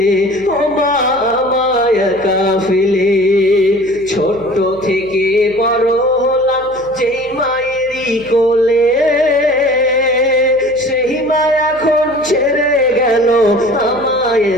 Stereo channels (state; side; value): noise; right; hum, 23 dB below the sound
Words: ও মা আমায় একা ফেলে। ছোট্ট থেকে বড় হলাম যেই মায়েরই কোলে, সেই মা এখন ছেড়ে গেল আমায়